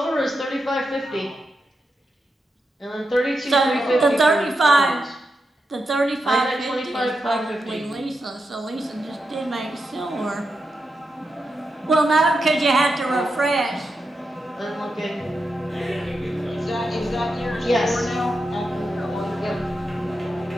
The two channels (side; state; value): both; normal; correlation 0.87